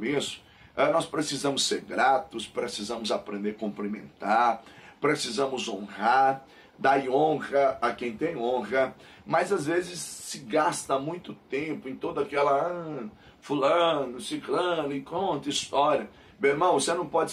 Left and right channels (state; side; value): identical; both; correlation 1.00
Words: Nós precisamos ser gratos, precisamos aprender a cumprimentar, precisamos honrar, dar honra a quem tem honra, mas às vezes se gasta muito tempo em toda aquela fulano, ciclano, e conta história. Meu irmão, você não pode